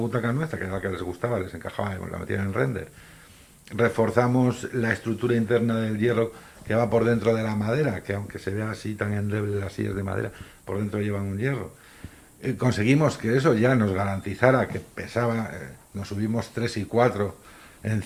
nuestra, que era la que les gustaba, les encajaba, la metían en render, reforzamos la estructura interna del hierro que va por dentro de la madera, que aunque se vea así tan endeble las sillas de madera, por dentro llevan un hierro. Conseguimos que eso ya nos garantizara que pesaba, nos subimos 3 y 4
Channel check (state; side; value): identical; both; correlation 1.00